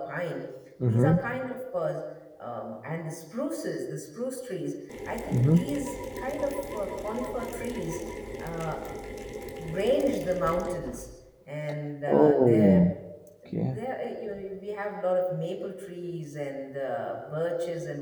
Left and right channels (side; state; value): both; identical; correlation 1.00